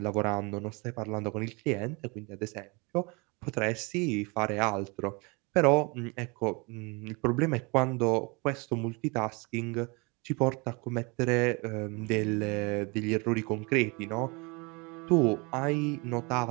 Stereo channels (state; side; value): quieter; left; 28.6 dB